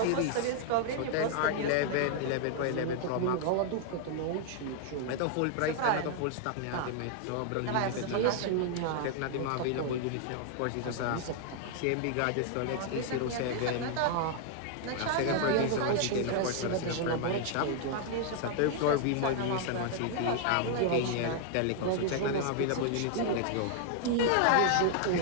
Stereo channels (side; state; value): both; different; correlation 0.00